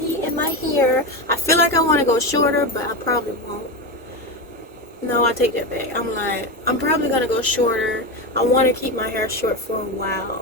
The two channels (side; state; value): both; normal; correlation 0.17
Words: and my hair. I feel like I want to go shorter, but I probably won't. No, I take that back. I'm probably going to go shorter. I want to keep my hair short for a